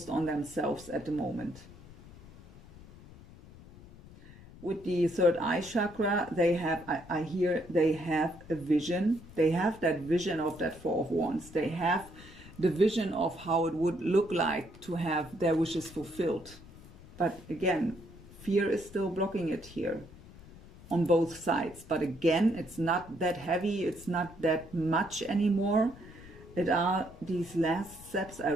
on themselves at the moment. With the 3rd eye chakra, they have, I hear they have a vision. They have that vision of that 4 of Wands. They have the vision of how it would look like to have their wishes fulfilled. But again, fear is still blocking it here on both sides. But again, it's not that heavy. It's not that much anymore. It are these last steps. I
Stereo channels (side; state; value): left; noise; rumble, 19 dB below the sound